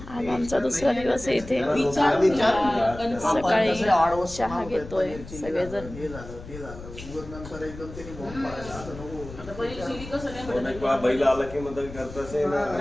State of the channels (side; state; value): left; noise; rumble, 14 dB below the sound